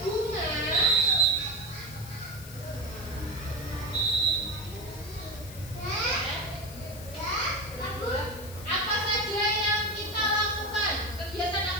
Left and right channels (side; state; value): left; noise; hiss, 16 dB below the sound